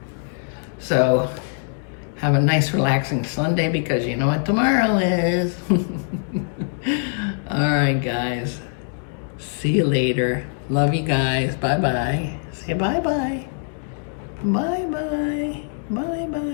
So have a nice relaxing Sunday, because you know what tomorrow is. All right, guys. See you later. Love you guys. Bye-bye. Say bye-bye. Bye-bye.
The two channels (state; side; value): silent; right; digital silence